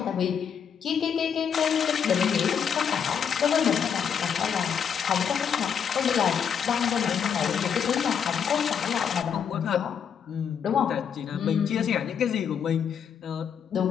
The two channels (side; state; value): right; quieter; 7.5 dB